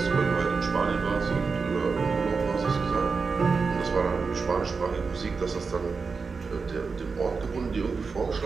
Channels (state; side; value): quieter; left; 4.8 dB